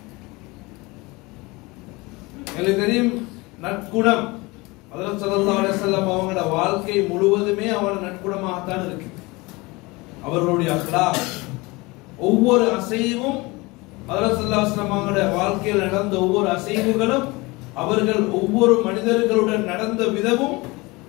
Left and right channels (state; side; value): quieter; right; 23.8 dB